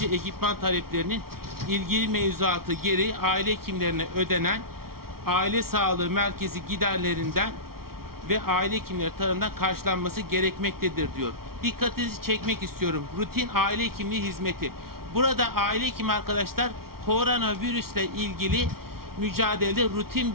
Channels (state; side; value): late; left; 0.94 ms